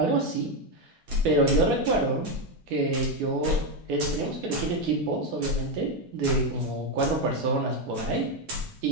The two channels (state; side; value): normal; both; correlation 0.07